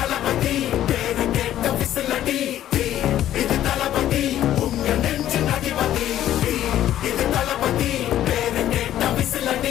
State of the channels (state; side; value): quieter; right; 12.2 dB